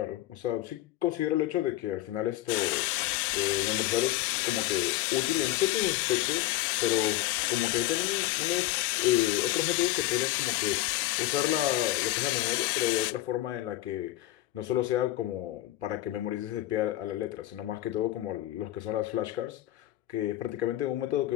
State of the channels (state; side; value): quieter; right; 15.8 dB